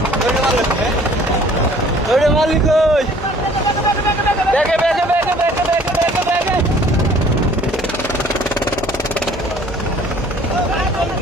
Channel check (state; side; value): normal; both; correlation 0.54